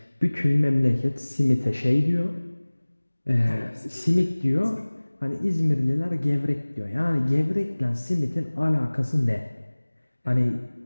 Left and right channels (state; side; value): inverted; both; correlation -1.00